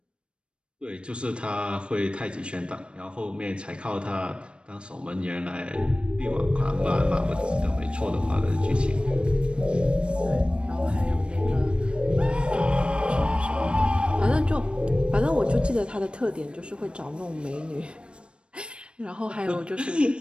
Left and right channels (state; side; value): late; left; 0.057 ms